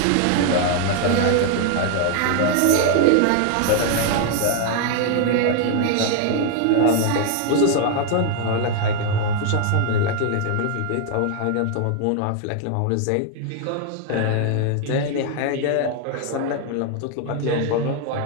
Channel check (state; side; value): different; both; correlation 0.00